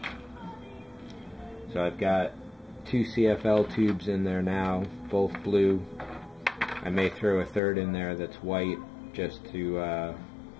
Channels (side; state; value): right; drops out; at 7.6 s